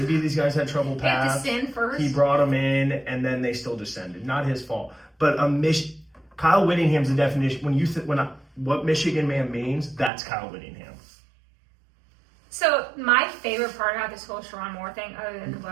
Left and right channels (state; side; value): drops out; left; at 10.1 s